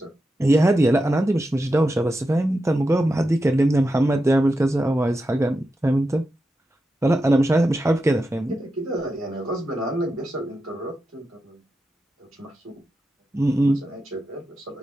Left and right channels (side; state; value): both; normal; correlation 0.89